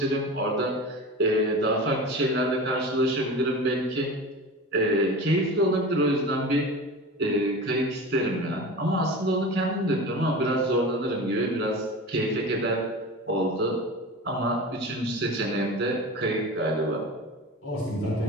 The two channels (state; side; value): normal; both; correlation 0.32